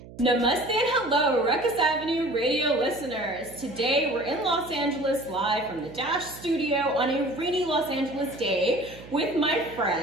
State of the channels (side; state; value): right; noise; hum, 17 dB below the sound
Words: Namaste and hello, Rukus Avenue radio listeners. Today we're in Los Angeles live from the Dash studio on a rainy Los Angeles day with my